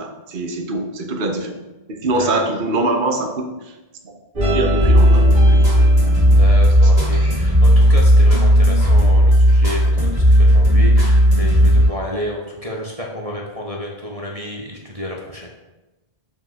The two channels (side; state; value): left; late; 1.7 ms